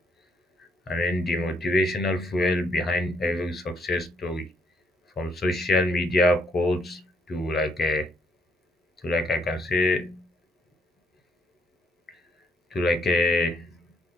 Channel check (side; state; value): both; normal; correlation 0.72